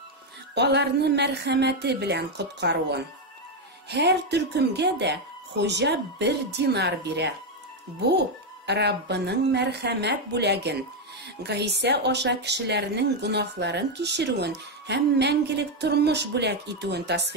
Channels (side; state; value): both; normal; correlation 0.05